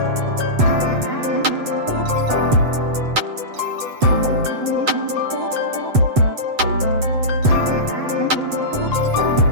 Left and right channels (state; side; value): late; left; 8.0 ms